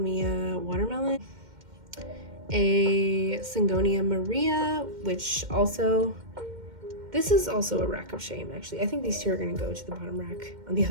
watermelon. A Syngonia Maria, which also, this is also a rack of shame, actually. I think these two are gonna go to the bottom rack on the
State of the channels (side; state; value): left; late; 2.1 ms